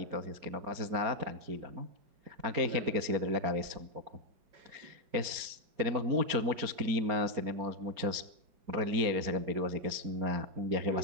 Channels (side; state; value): left; late; 4.4 ms